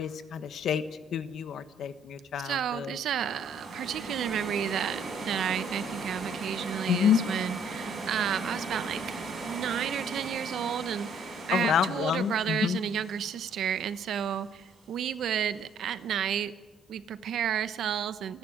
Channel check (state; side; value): normal; both; correlation 0.61